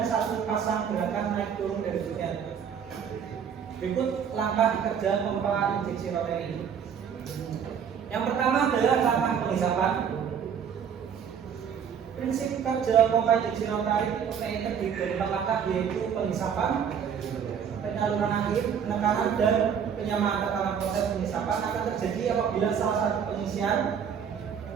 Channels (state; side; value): quieter; left; 7.6 dB